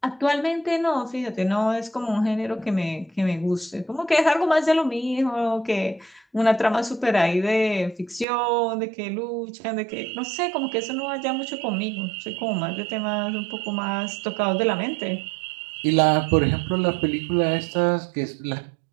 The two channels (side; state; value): left; drops out; at 8.2 s